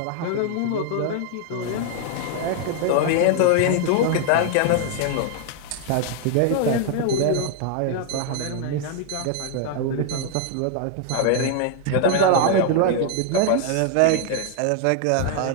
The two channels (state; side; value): different; both; correlation 0.00